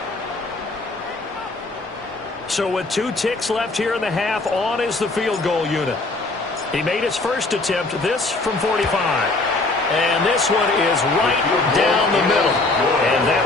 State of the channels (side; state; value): right; quieter; 3.2 dB